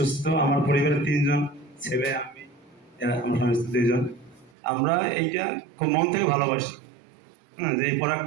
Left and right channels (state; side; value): drops out; left; at 4.5 s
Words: আমার পরিবারের 3জন ছেলে, আমি, আমার স্বামী স্ত্রী 2জন। আমরা এইটা খুব মন থেকে ভালোবাসি। হ্যাঁ, যে এই